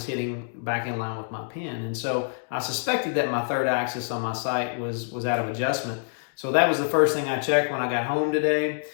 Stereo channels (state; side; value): silent; right; digital silence